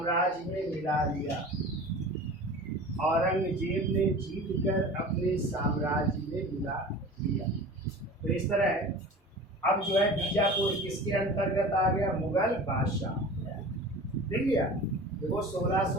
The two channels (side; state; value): both; normal; correlation 0.38